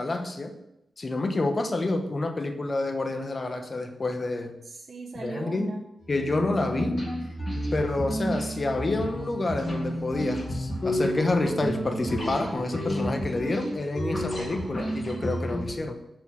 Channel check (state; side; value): normal; both; correlation 0.92